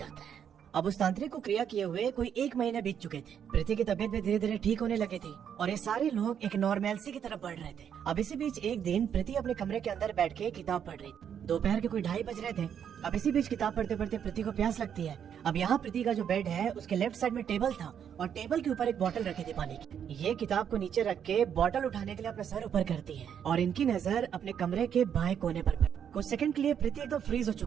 है। अब उस तांत्रिक को क्रिया किए हुए कोई 1 महीने बीत चुके थे। प्रीति की तबीयत भी धीरे धीरे ठीक होने लगी थी और ये सारे लोग एक नॉर्मैलिटी की तरफ बढ़ रहे थे। अब इसी बीच एक दिन प्रीति अपने कमरे के अंदर बैठ के किताब पढ़ रही थी। दोपहर के कोई 2:30 बज रहे थे। अब इसी बीच किताब पढ़ते पढ़ते प्रीति को प्यास लगती है। अब यहाँ प्रीति का जो बेड है उसके लेफ्ट साइड में टेबल था और टेबल के ऊपर एक बोतल रखी थी पानी की। ये किताब को नीचे रख के बोतल उठाने के लिए अपना सर ऊपर करती है और इनकी नजर अपने कमरे के बाएं कोने पर पड़ी। कुछ सेकंड के लिए प्रीति एकदम फ्रीज हो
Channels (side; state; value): left; quieter; 8.5 dB